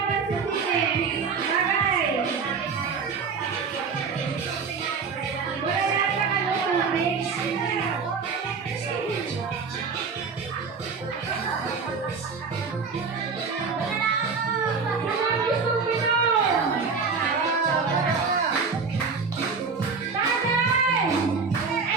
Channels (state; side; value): quieter; left; 5.2 dB